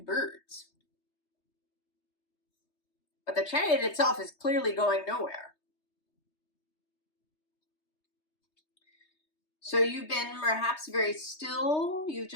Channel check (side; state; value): right; late; 3.2 ms